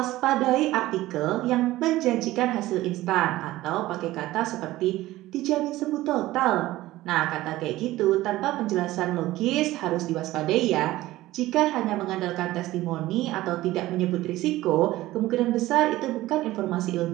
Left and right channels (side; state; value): left; quieter; 16.7 dB